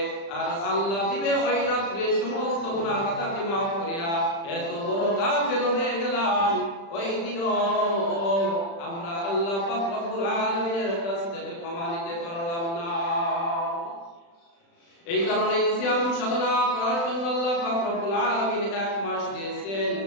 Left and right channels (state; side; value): late; right; 36 ms